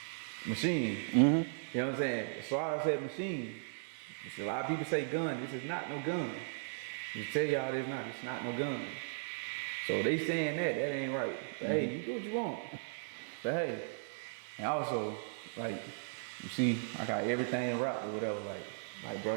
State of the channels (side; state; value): left; silent; digital silence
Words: Machine. You know what I'm saying? So I said machine. You see, a lot of people say gun. This is not no gun. Just tell y'all it's not no gun. So they saying that ain't right. But hey, you do what you want. But hey, and also, like, you see, I got everything wrapped or whatever. Like, bro,